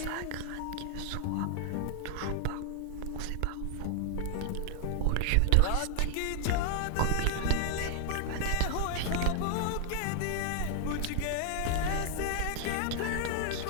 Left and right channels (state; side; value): different; both; correlation 0.00